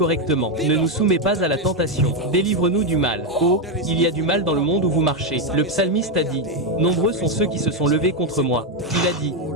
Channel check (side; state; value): both; normal; correlation 0.05